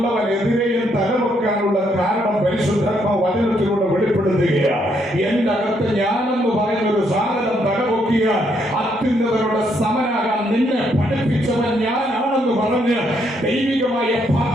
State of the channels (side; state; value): both; normal; correlation 0.73